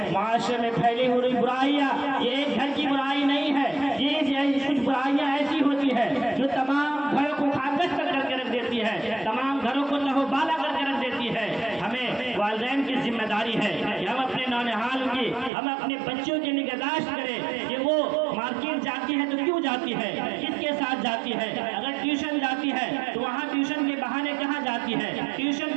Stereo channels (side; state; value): left; drops out; at 15.5 s